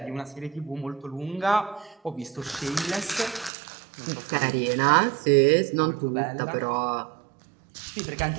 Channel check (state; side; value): drops out; left; at 3.5 s